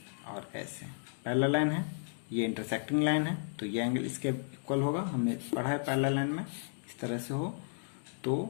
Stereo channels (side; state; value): right; silent; digital silence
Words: और ऐसे पैरेलल लाइन है, ये इंटरसेक्टिंग लाइन है तो ये एंगल इसके इक्वल होगा, हमने पढ़ा है पैरेलल लाइन में इस तरह से हो